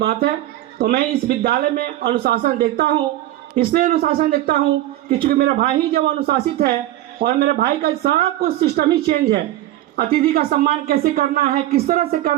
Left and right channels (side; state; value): left; quieter; 14.6 dB